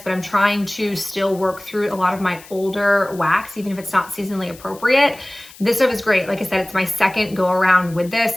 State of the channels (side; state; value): left; noise; hiss, 21 dB below the sound